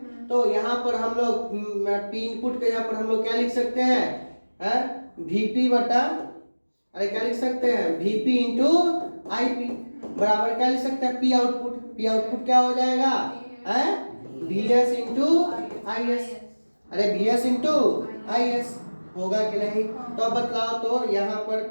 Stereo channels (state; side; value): inverted; both; correlation -1.00